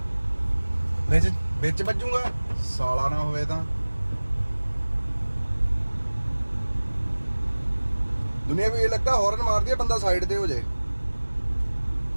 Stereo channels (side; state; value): both; inverted; correlation -1.00